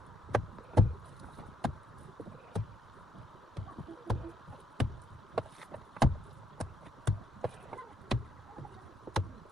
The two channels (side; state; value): both; normal; correlation 0.73